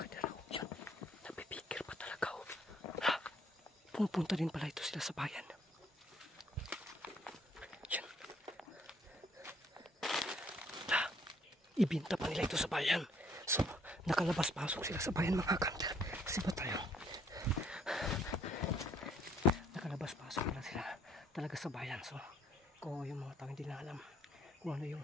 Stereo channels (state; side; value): normal; both; correlation 0.64